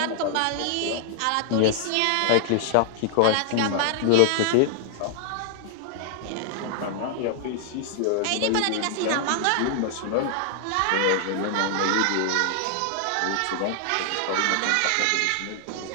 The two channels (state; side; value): different; both; correlation -0.01